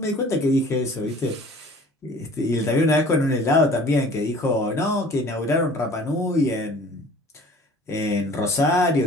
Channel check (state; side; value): normal; both; correlation 0.48